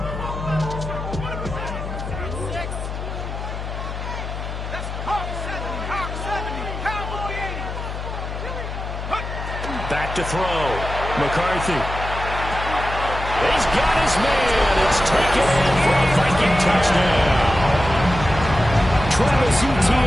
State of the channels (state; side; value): noise; left; hum, 7 dB below the sound